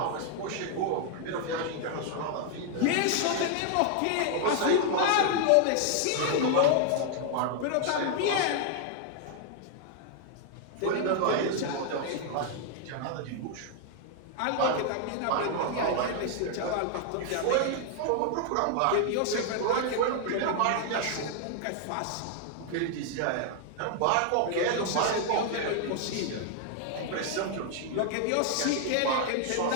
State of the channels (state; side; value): different; both; correlation 0.00